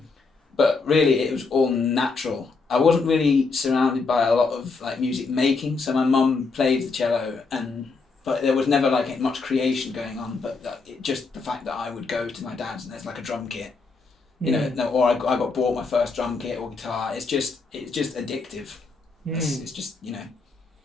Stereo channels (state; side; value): quieter; right; 4.3 dB